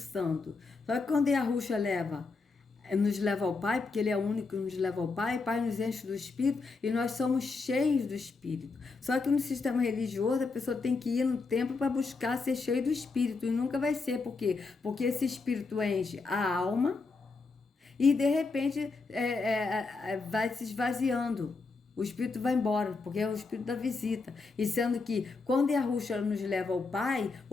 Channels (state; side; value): quieter; right; 4.1 dB